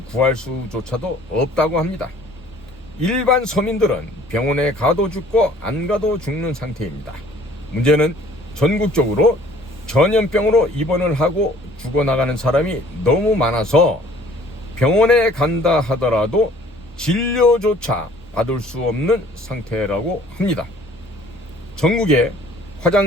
구할 수조차도 없다고 합니다. 일반 서민들은 병원에 가도 죽고 안 가도 죽는 상태입니다. 문제는 전국적으로 전염병으로 입원을 하고 죽어나가는 사람이 너무 많아서 병원에 간다 하더라도 진료조차 받을 수 없는 상태라고 합니다. 전국에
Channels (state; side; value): normal; both; correlation 0.55